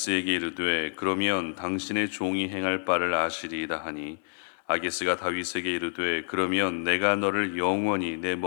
이르되 그러면 당신의 종이 행할 바를 아시리이다 하니 아기스가 다윗에게 이르되 그러면 내가 너를 영원히 내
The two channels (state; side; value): silent; right; 59 dB below the other